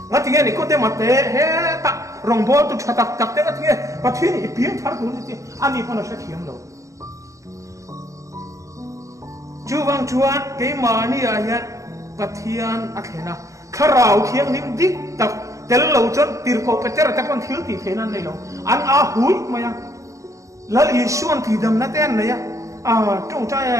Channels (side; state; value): left; late; 0.15 ms